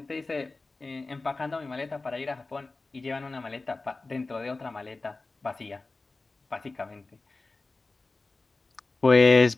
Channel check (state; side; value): quieter; right; 3.5 dB